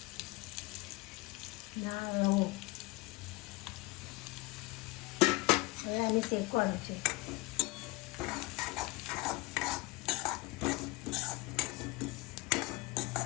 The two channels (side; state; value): right; quieter; 22.8 dB